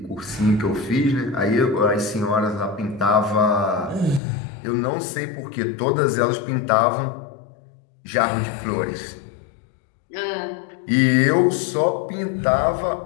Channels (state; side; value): drops out; right; at 4.2 s